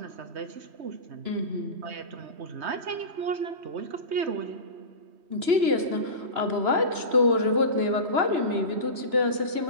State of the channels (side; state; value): left; late; 2.9 ms